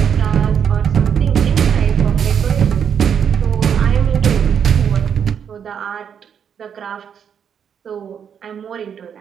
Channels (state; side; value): quieter; left; 7.9 dB